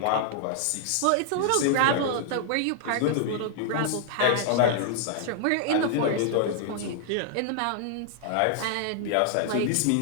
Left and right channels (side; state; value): both; different; correlation -0.01